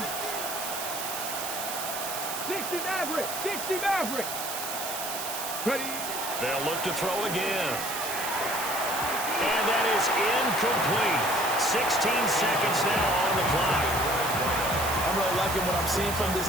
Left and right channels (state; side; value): noise; right; hiss, 5 dB below the sound